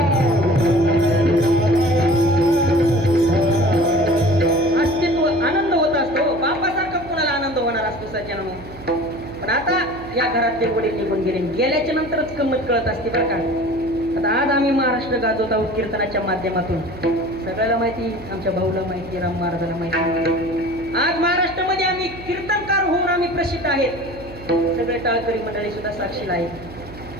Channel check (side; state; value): right; noise; hum, 16 dB below the sound